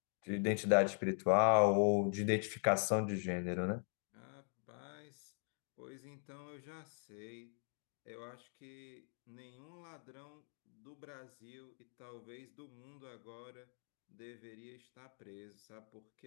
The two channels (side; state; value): right; silent; 50 dB below the other